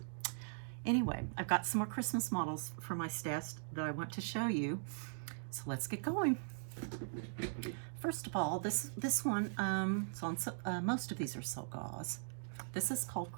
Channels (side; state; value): left; silent; digital silence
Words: Anyway, I've got some more Christmas models for my stash that I want to show you, so let's get going. First of all, this one, most of these are silk gauze. This is called